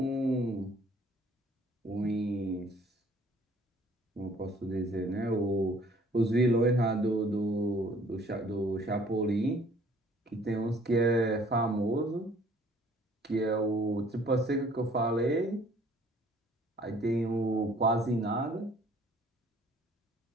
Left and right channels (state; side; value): normal; both; correlation 0.57